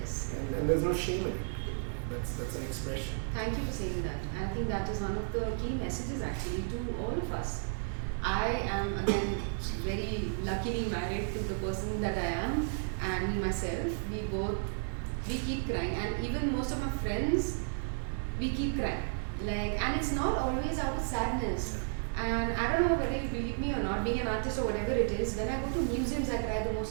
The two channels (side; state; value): left; silent; digital silence